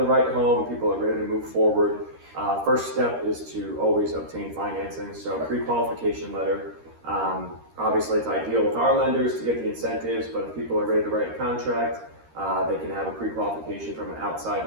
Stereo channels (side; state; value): left; late; 13 ms